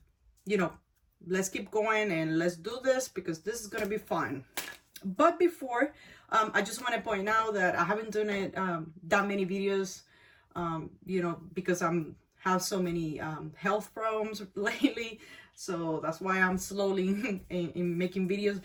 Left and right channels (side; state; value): both; identical; correlation 1.00